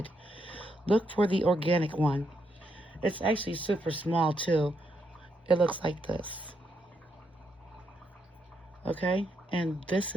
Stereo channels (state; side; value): normal; both; correlation 0.78